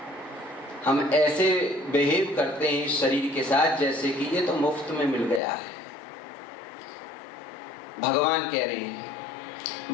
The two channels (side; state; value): right; drops out; at 5.4 s